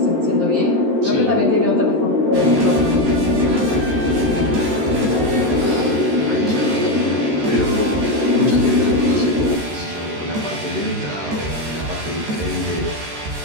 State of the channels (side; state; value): left; late; 13 ms